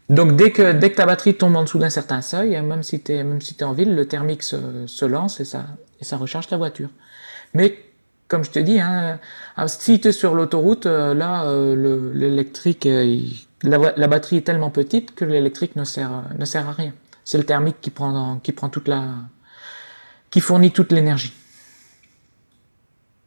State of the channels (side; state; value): both; inverted; correlation -1.00